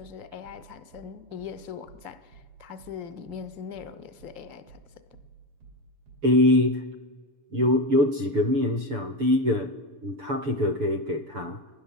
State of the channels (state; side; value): late; left; 6.9 ms